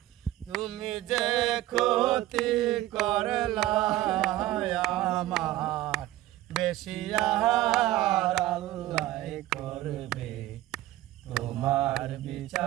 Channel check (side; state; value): left; quieter; 15.7 dB